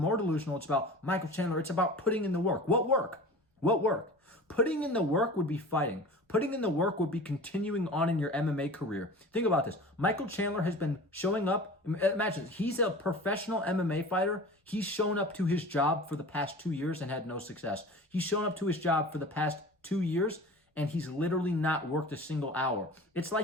delusional, it's about Michael Chandler. It's about putting in the work. What work? What work? Putting in the work would be fighting. Putting in the work would be continuing on in your MMA career. Think about this. Michael Chandler has been showing up. Imagine, he's a professional MMA fighter. He's shown up to his job for the past 2 years and had no success. He's shown up to his job for the past 2 years and he's literally not worked a single hour. It's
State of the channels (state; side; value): normal; both; correlation 0.38